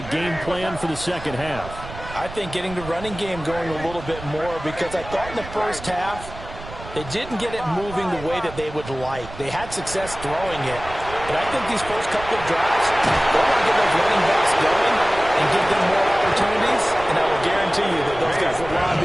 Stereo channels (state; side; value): noise; right; rumble, 13 dB below the sound